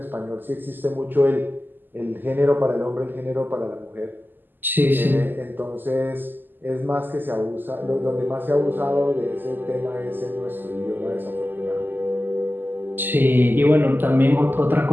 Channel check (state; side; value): late; left; 0.091 ms